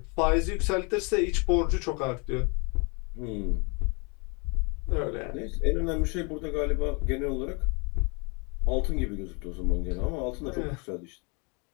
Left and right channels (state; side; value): quieter; right; 31.9 dB